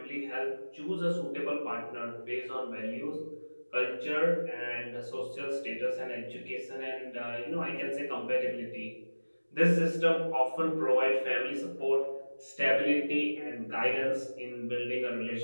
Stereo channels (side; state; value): both; inverted; correlation -1.00